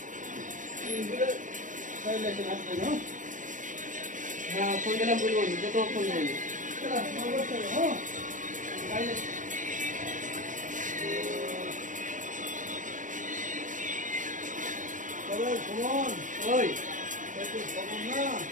হ্যাঁ, ফোন দিলাম, বলবো যে তোমার ফোন দিলাম। সুমন ওই খবর না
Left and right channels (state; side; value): late; left; 0.37 ms